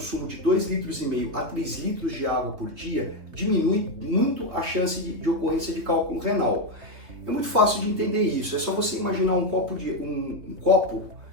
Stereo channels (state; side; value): late; left; 3.3 ms